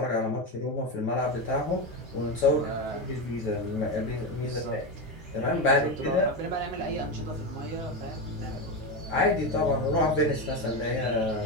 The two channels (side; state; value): both; normal; correlation 0.15